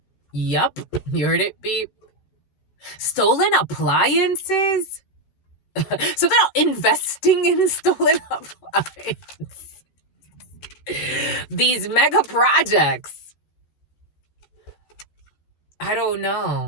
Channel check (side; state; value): right; late; 13 ms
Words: Yup, you heard it, beep. Stolen appliances? Something about investing in stolen appliances. These mega projects. I don't